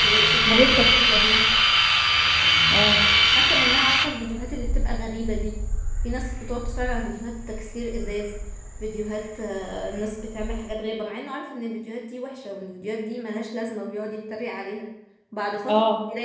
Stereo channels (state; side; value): identical; both; correlation 1.00